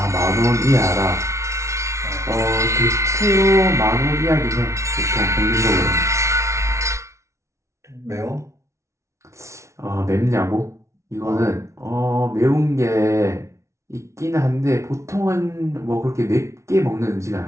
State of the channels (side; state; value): left; late; 0.14 ms